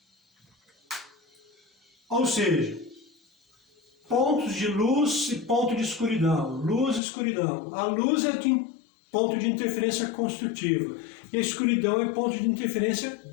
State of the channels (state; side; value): drops out; right; at 7.0 s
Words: Ou seja, pontos de luz e ponto de escuridão. Luz e escuridão. A luz é de ponto de interferência construtiva. E a escuridão é ponto de interferência